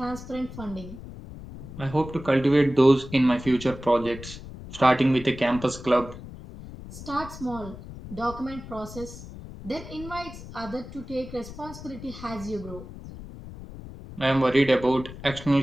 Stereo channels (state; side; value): noise; left; rumble, 13 dB below the sound